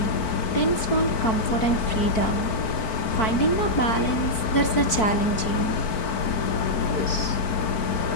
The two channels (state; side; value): late; right; 4.5 ms